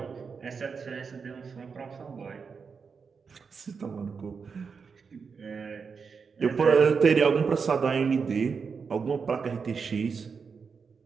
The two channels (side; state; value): left; quieter; 5.6 dB